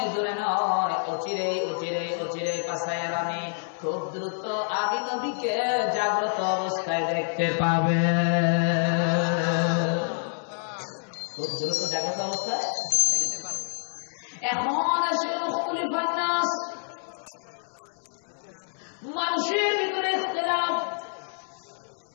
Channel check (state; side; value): silent; right; 60 dB below the other